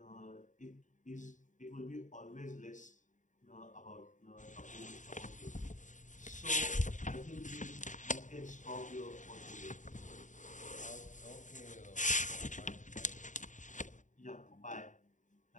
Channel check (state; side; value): late; right; 0.36 ms